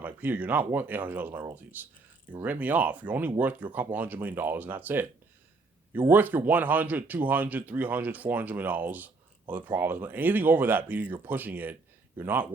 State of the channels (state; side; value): quieter; left; 3.7 dB